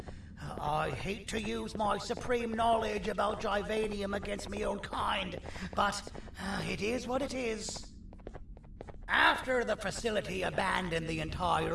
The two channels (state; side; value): identical; both; correlation 1.00